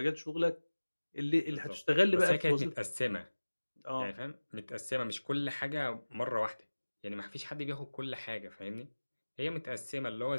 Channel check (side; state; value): both; inverted; correlation -1.00